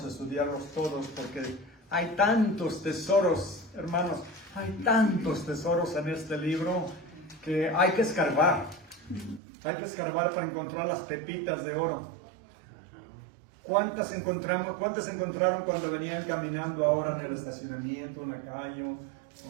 a estudiarlos todos porque hay tantos tesoros, hermanos, hay tantos tesoros en este libro que hay que escarbar. Hay que escarbar para encontrar las pepitas de oro. ¿Cuántas encontraron cuando venían caminando ahora en el estacionamiento, en la calle?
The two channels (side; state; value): left; drops out; at 9.4 s